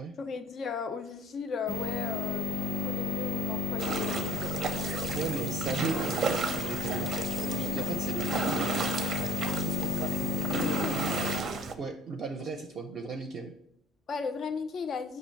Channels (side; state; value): both; normal; correlation 0.51